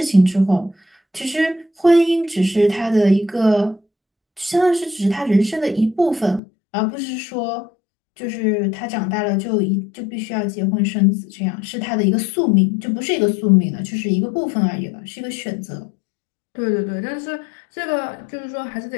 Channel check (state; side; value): drops out; right; at 6.4 s